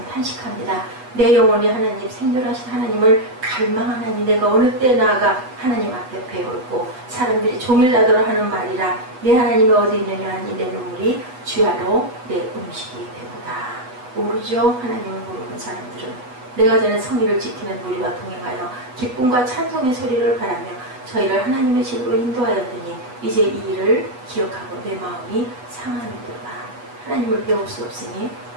탄식합니다. 내 영혼이 하나님, 생존하신 하나님을 갈망하나니 내가 어느 때 나아가 하나님 앞에 배울고 사람들이 종일나더러 하는 말이라 내 하나님이 어디 있느냐 하니 내 눈물이 주야로 내 음식이 되보다. 모르죠. 하나님을 모르는 사람들은. 내가 전에 성의를 지키는 우리와 동행하여 기쁨과 찬송의 소리를 바라며 저희를 하나님의 집으로 인도하였더니 이제 이 일을 기억하고 내 마음이 상하는도다. 하나님을 배울 수 없으니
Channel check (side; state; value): left; late; 8.1 ms